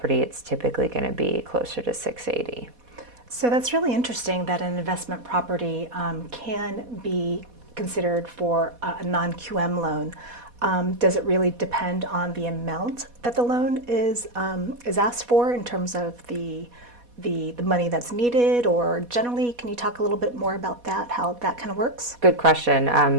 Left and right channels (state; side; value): late; left; 4.1 ms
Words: it's typically going to be closer to 680. So that's really interesting that an investment property can be considered for a non-QM loan. Does it really depend on the amount that the loan is asked for in terms of the money that's needed, or generally, can you talk a little bit more about that, how that kind of works? Good question.